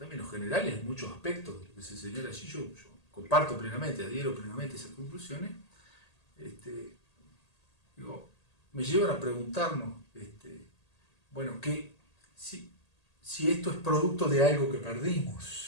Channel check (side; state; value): right; late; 1.8 ms